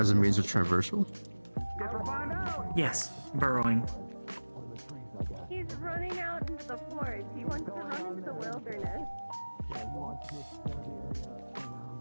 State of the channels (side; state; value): both; inverted; correlation -1.00